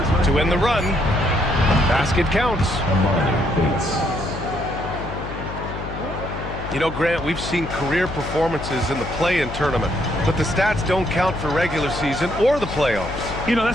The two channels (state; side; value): noise; left; hum, 9 dB below the sound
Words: To end the run. Basket counts. You know, Grant, we've seen career performances in the play-in tournament, but the stats don't count for regular season or the playoffs. You know,